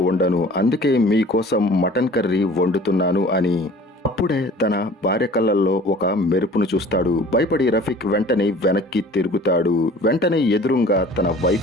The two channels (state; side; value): normal; both; correlation 0.47